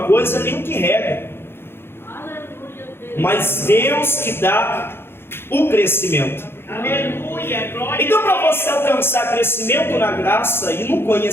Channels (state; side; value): late; right; 0.11 ms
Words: coisa, nem o que rega. Mas Deus que dá o crescimento. Aleluia, glória Então, a para Deus. você alcançar crescimento na graça e no